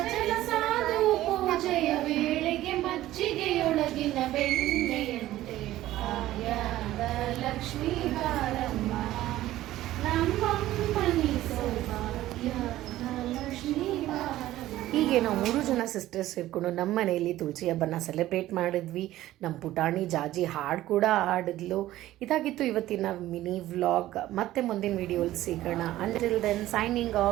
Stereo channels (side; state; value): left; quieter; 14.9 dB